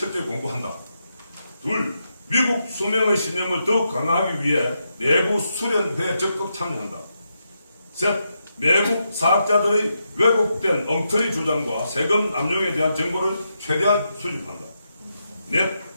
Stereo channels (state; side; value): inverted; both; correlation -0.84